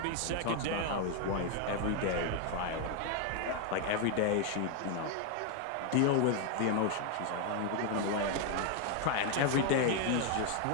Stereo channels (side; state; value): both; different; correlation 0.01